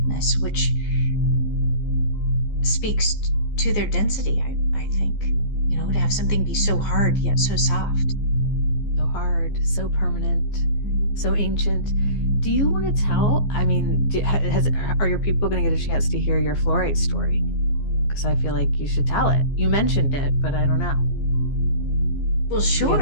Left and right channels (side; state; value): right; late; 14 ms